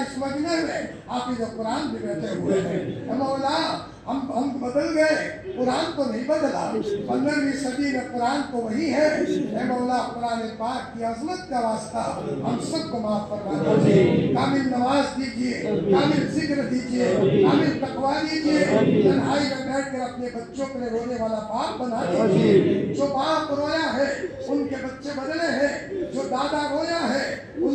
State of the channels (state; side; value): identical; both; correlation 1.00